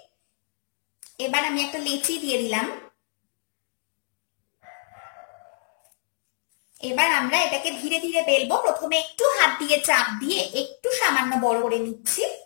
এবার আমি একটা লেচি দিয়ে দিলাম। এবার আমরা এটাকে ধীরে ধীরে বেলবো। প্রথমে একটু হাত দিয়ে চাপ দিয়ে একটু সামান্য বড় করে নিচ্ছি।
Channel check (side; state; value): right; silent; digital silence